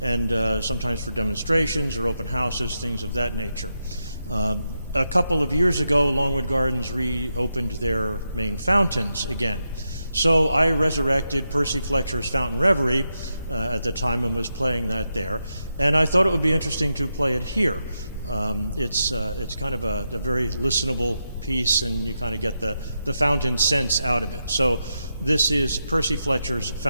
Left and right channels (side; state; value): both; inverted; correlation -0.86